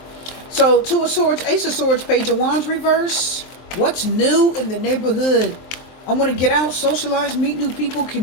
So 2 of Swords, Ace of Swords, Page of Wands reverse. What's new in the neighborhood? I want to get out, socialize, meet new people,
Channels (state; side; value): late; right; 23 ms